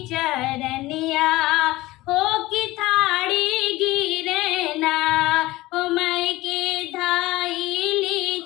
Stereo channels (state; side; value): quieter; right; 18.6 dB